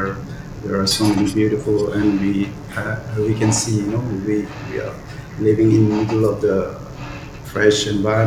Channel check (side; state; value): both; identical; correlation 1.00